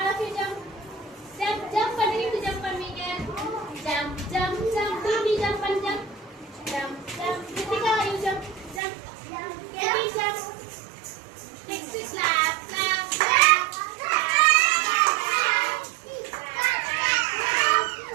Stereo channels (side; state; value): left; drops out; at 8.8 s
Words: of you jump. Jump, jump பண்ணுவீங்க jump பண்ணுவீங்க. Jump, jump, jump. Baby jump பண்ணு jump. Jump, jump. Ritika you jump, jump. Baby jump. Next is clap, clap, clap.